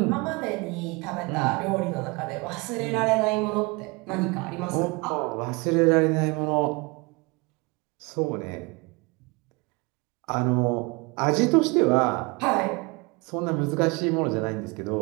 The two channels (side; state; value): left; quieter; 26.8 dB